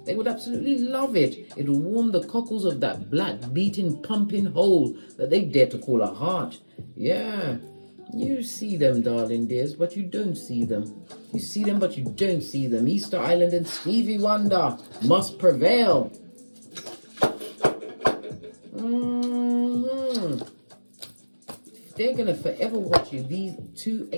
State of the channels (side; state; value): both; inverted; correlation -1.00